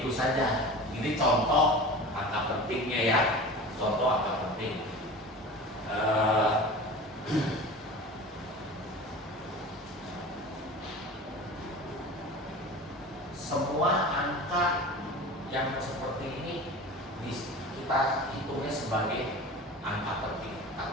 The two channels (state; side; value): normal; both; correlation 0.35